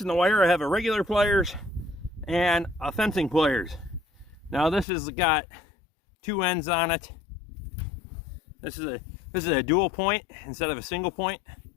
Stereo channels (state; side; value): drops out; right; at 4.9 s